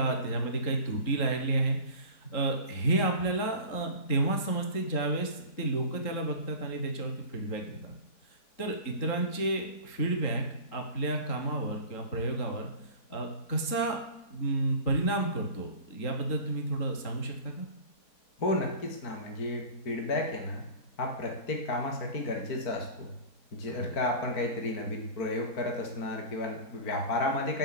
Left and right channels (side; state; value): right; late; 3.8 ms